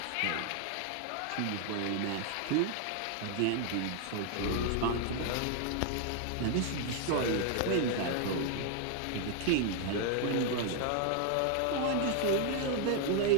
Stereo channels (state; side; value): different; both; correlation 0.00